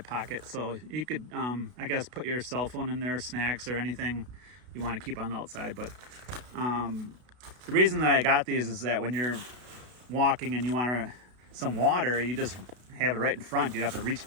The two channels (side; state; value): left; late; 32 ms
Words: pocket, so you could I guess put your cell phone in there, snacks or anything you want to keep on the outside. But the reason that I got these is that when you're walking and you want some water, you just have it right in front. You'd have to reach